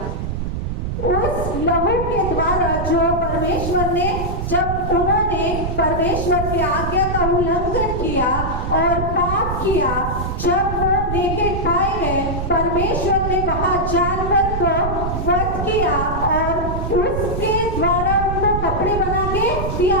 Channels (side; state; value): right; noise; rumble, 3 dB below the sound